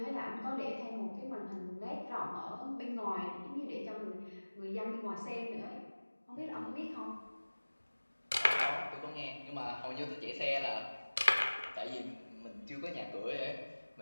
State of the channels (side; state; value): both; inverted; correlation -1.00